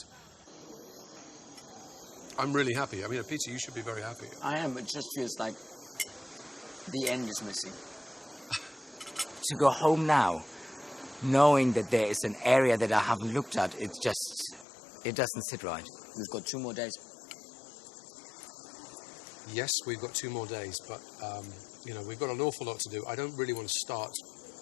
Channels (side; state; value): right; drops out; at 14.7 s